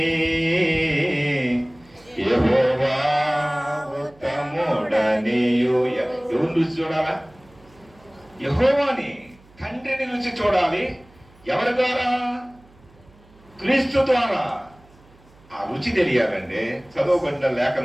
యెహోవా ఉత్తముడనియు. ఎవరు రుచి చూడాలా? యెహోవాని, తండ్రిని రుచి చూడాలి. ఎవరి ద్వారా? క్రీస్తు ద్వారా. ఆ రుచి తెలియాలండి. చదవబడిన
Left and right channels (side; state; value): right; noise; hum, 27 dB below the sound